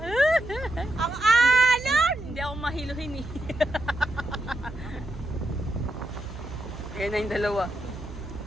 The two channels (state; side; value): noise; right; hum, 12 dB below the sound